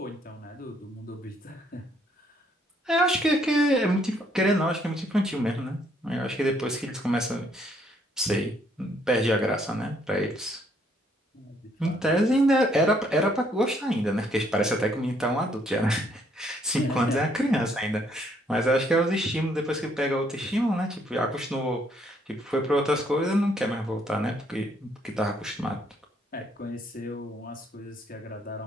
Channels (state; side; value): normal; both; correlation 0.68